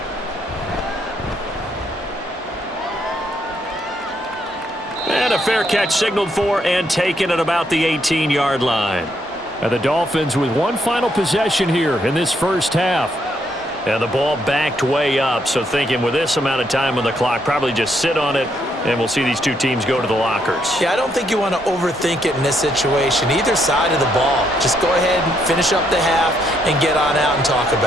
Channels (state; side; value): normal; both; correlation 0.74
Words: And a fair catch signaled for and taken at about the 18-yard line. And the Dolphins with one final possession here in this first half. And the ball backed way up, so thinking with this amount of time on the clock, probably just sit on it, and we'll see these two teams go to the lockers. Yeah, I don't think you want to overthink it in this situation. Either side of the ball. Just go ahead and finish up the half and get on out and talk